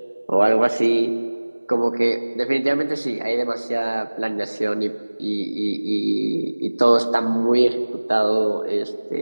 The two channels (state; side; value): inverted; both; correlation -1.00